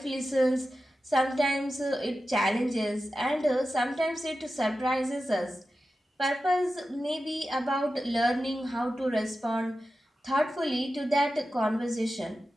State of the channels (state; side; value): normal; both; correlation 0.93